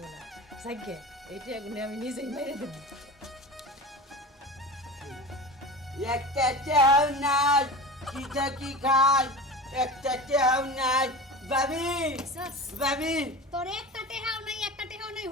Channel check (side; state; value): both; normal; correlation 0.31